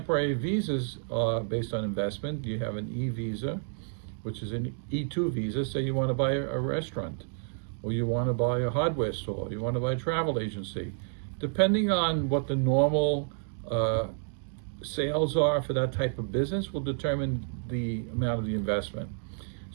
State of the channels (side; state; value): left; silent; digital silence